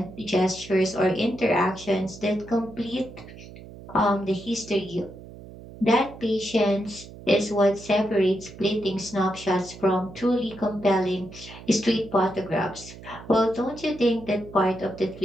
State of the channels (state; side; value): noise; right; hum, 16 dB below the sound